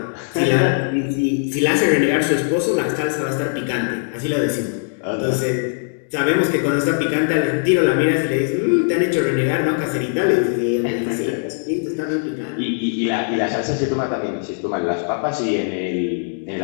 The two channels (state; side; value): silent; right; 66 dB below the other